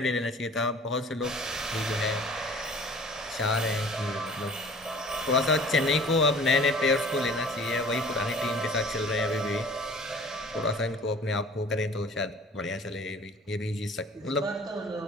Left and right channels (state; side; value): normal; both; correlation 0.48